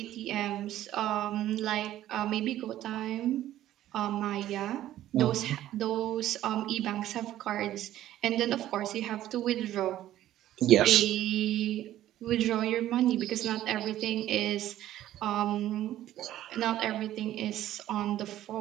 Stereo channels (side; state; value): left; quieter; 13.2 dB